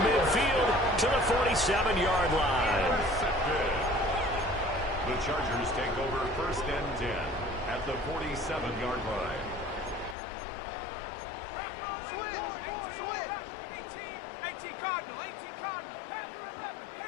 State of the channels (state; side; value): drops out; right; at 10.2 s